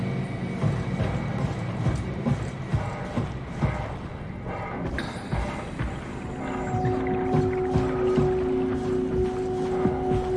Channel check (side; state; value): both; identical; correlation 1.00